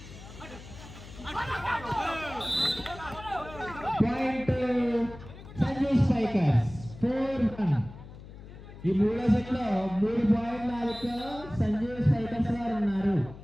Point to Sanjay Spikers. 4-1. ఈ మూడో set లో 3 పాయింట్ల ఆధిక్యంలో సంజయ్ స్పైకర్స్ వారు ఉన్నారు.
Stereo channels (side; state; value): left; noise; hum, 16 dB below the sound